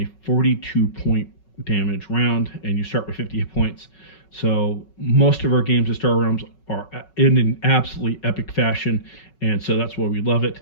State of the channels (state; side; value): late; right; 5.4 ms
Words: 42 point damage round, and you start with 50 hit points. So most of our games of Star Realms are in an absolutely epic fashion, and so that's why we love it.